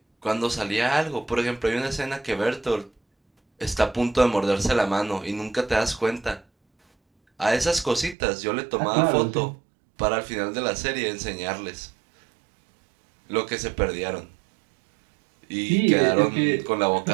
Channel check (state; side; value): drops out; left; at 8.2 s